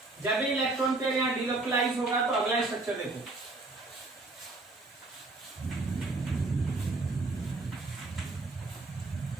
जब भी इलेक्ट्रॉन पेयर यहां डीलोकलाइज होगा तो अगला स्ट्रक्चर देखो।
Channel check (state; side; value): quieter; left; 3.2 dB